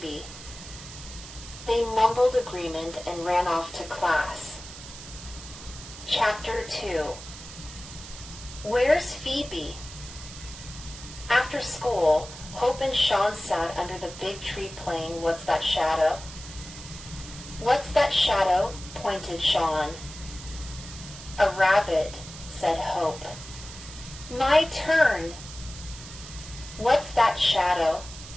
They mumbled agreement and ran off to class. Chapter 2. Where's Phoebe? After school, Hope and Sean sat under the big tree playing What's That Shadow? What's that shadow? Pointed Sean. A rabbit, said Hope. My turn. What's that shadow?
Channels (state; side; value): noise; right; hiss, 14 dB below the sound